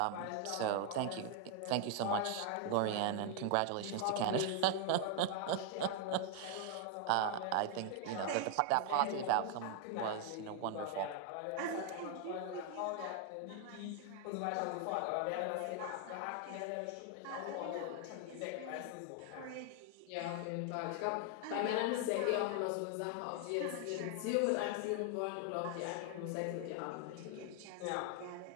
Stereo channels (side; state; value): both; different; correlation 0.00